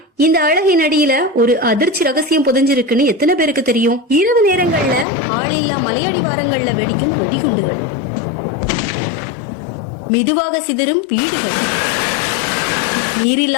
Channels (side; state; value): right; drops out; at 5.1 s